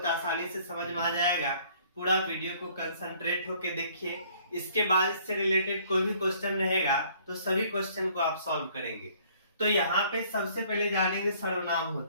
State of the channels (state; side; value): inverted; both; correlation -0.59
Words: आसानी से समझ में आ जाएगा। पूरा वीडियो को कंसंट्रेट होके देखिए। इसके बाद इससे रिलेटेड कोई भी क्वेश्चन रहेगा तो सभी क्वेश्चन को आप सॉल्व करेंगे। तो यहाँ पे सबसे पहले जानेंगे सर्वनाम